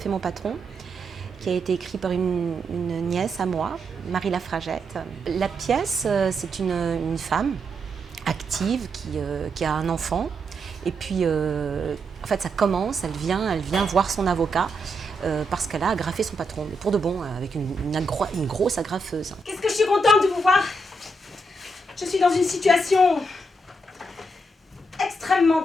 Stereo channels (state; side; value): normal; both; correlation 0.81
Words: mon patron, qui a été écrit par une nièce à moi, Marie Lafragette. La pièce, c'est une femme active qui a un enfant. Et puis, en fait, ça commence, elle vient voir son avocat parce qu'elle a agrafé son patron, mais pour de bon, avec une grosse agrafeuse. Qu'est-ce que je suis contente de vous voir! Je suis dans une situation extrêmement